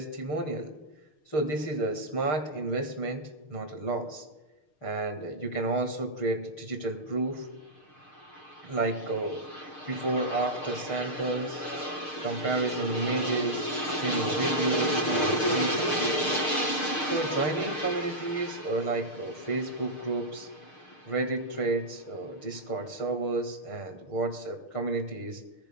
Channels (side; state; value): right; late; 6.6 ms